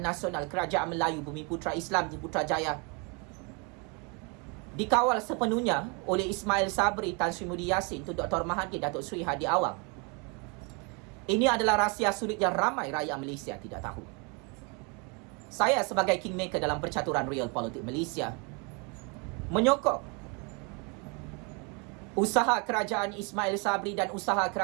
Nasional, Kerajaan Melayu Bumi Putra Islam di Putrajaya dikawal sepenuhnya oleh Ismail Sabri, Tan Sri Muhyiddin Yassin, Tun Dr. Mahathir, Datuk Seri Hadi Awang. Ini adalah rahsia sulit yang ramai rakyat Malaysia tidak tahu. Saya sebagai kingmaker dalam percaturan real politik Malaysia menyokong usaha kerajaan Ismail Sabri dan usaha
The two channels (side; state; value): left; quieter; 31.7 dB